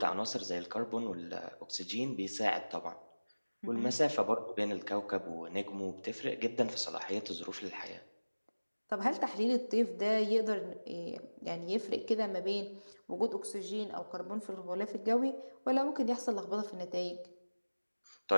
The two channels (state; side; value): inverted; both; correlation -1.00